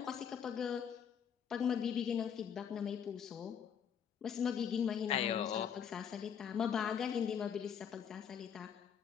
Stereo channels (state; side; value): quieter; right; 7.9 dB